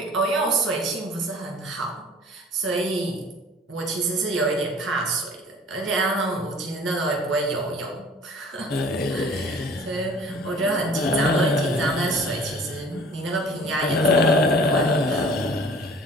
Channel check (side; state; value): both; normal; correlation 0.48